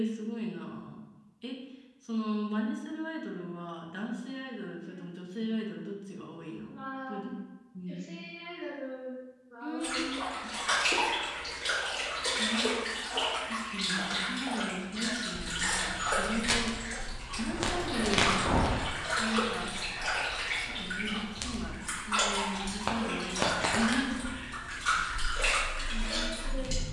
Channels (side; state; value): both; identical; correlation 1.00